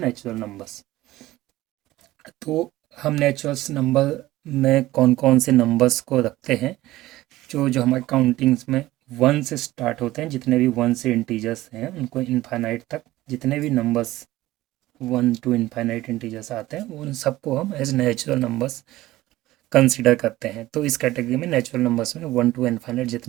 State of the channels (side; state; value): left; quieter; 16.7 dB